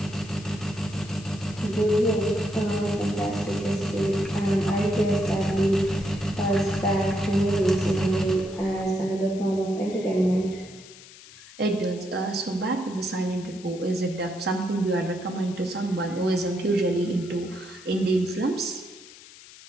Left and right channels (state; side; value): noise; left; hiss, 19 dB below the sound